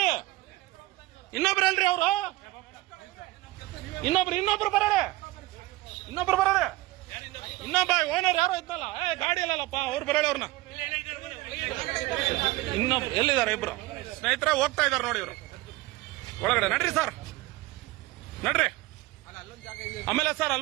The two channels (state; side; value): quieter; left; 19.6 dB